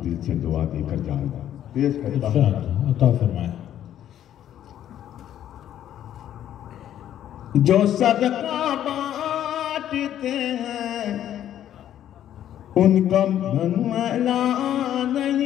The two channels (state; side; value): quieter; right; 11.1 dB